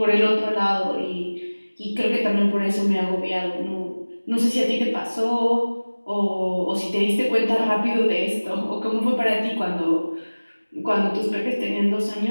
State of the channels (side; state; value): both; inverted; correlation -1.00